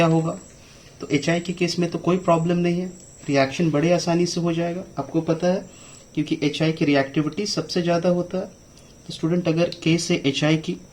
होगा? तो HI के केस में तो कोई प्रॉब्लम नहीं है, रिएक्शन बड़े आसानी से हो जाएगा, आपको पता है, क्योंकि HI की रिएक्टिविटी सबसे ज़्यादा होता है। तो स्टूडेंट अगर केस है HI की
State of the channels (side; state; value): both; identical; correlation 1.00